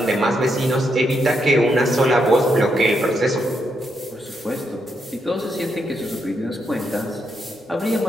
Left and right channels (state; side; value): normal; both; correlation 0.80